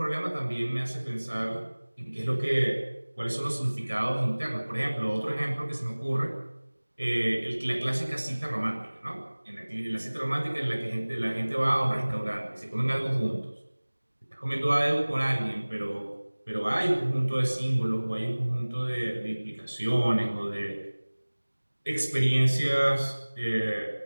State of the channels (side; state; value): both; inverted; correlation -1.00